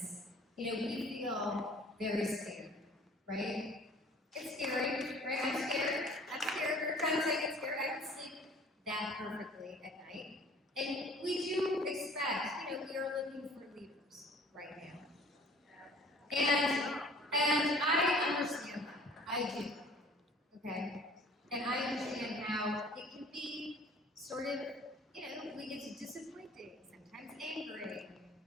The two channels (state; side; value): normal; both; correlation 0.50